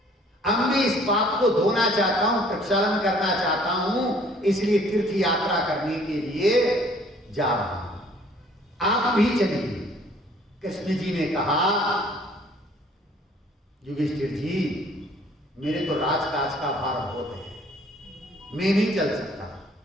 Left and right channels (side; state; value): both; normal; correlation 0.57